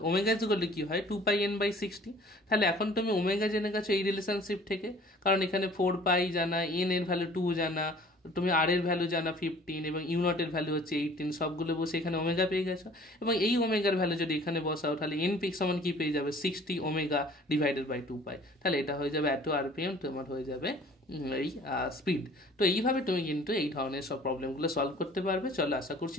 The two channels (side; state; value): both; normal; correlation 0.51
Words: ওমেগা ইজ ইকুয়াল টু কি হয় 2πn/60। তাহলে এখন তুমি ওমেগা জেনে গেছো এই রিলেশনশিপ থেকে, কারণ এখানে 4π জানা, n এর ভ্যালু 2 জানা, তুমি আর এর ভ্যালু জানা 15 এবং ইউ নটের ভ্যালু হচ্ছে 18, সবগুলো বসে এখানে ওমেগা পেয়ে গেছো। এবং এই ওমেগার ভ্যালু যদি এখানে বসাও তাহলে এন পিক সমান কি পেয়ে যাবে, 60 ওমেগা ডিভাইডেড বাই 2 পাই। তাহলে এটা হয়ে যাবে এত আরপিএম, তোমার হয়ে যাবে এই স্পিড। তো এইভাবে তুমি কিন্তু এই ধরনের সব প্রবলেমগুলো সলভ করতে পারবে। চলো, আশা করছি